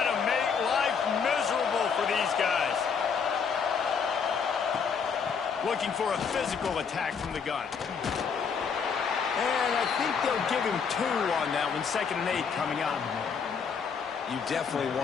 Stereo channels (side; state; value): right; quieter; 6.2 dB